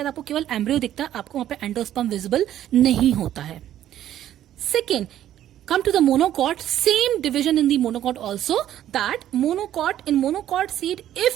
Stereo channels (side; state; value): left; quieter; 11.8 dB